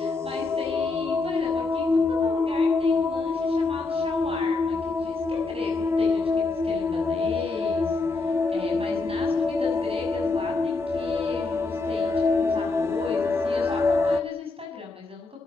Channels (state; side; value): quieter; right; 3.7 dB